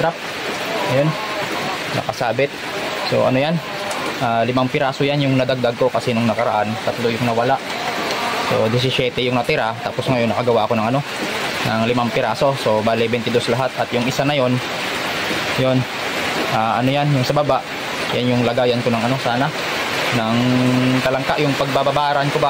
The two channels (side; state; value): both; identical; correlation 1.00